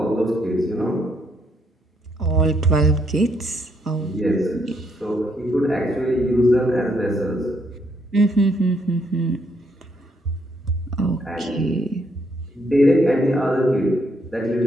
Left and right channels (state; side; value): normal; both; correlation 0.73